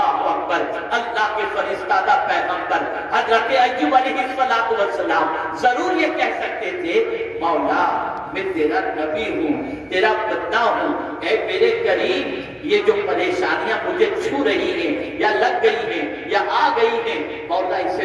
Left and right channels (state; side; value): identical; both; correlation 1.00